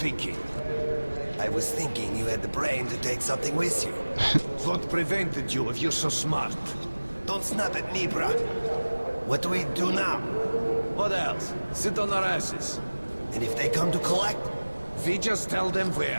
I was thinking you had the brain to take something with you. What prevented you if you're so smart? Don't snap at me, bruh. What do we do now? What else? Sit on our asses. And if they come to collect? We just tell them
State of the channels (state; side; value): inverted; both; correlation -1.00